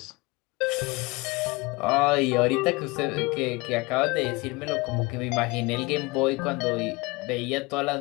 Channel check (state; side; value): quieter; right; 24.5 dB